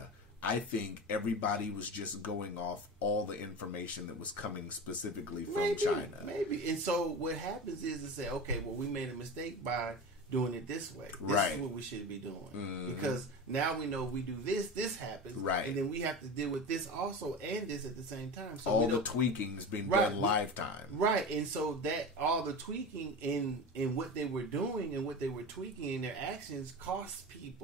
I think everybody was just going off all the information that was coming specifically from China. Maybe. And so what happens is to say, okay, well, we made a mistake by doing it this way. This is what we should be doing. Mm-hmm. Because now we know if we do this happens. Right. And then we have to deal with this also and this at the same time. So all the tweaking's been done lifetime. Right. And so that all the tweaking in what they were doing and what they were tweaking in their actions cost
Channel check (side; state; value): both; normal; correlation 0.28